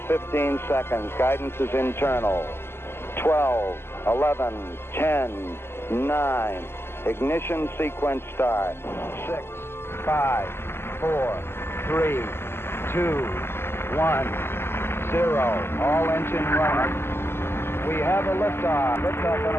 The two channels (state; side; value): late; right; 0.12 ms